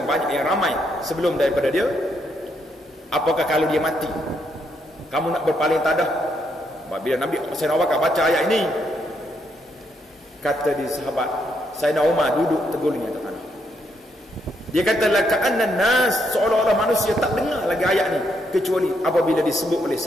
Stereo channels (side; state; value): both; normal; correlation 0.76